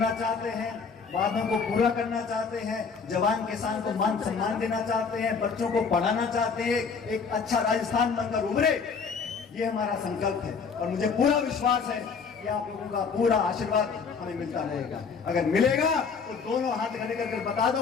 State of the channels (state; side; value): quieter; right; 5.5 dB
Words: चाहते हैं, वादों को पूरा करना चाहते हैं, जवान किसान को मान सम्मान देना चाहते हैं, बच्चों को पढ़ाना चाहते हैं, एक अच्छा राजस्थान बनकर उभरे, ये हमारा संकल्प है। और मुझे पूरा विश्वास है कि आप लोगों का पूरा आशीर्वाद हमें मिलता रहेगा। अगर मिलेगा तो दोनों हाथ खड़े करके बता दो